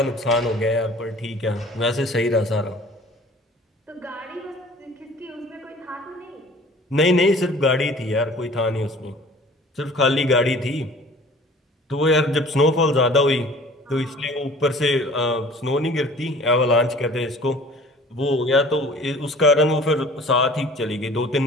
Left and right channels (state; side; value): normal; both; correlation 0.48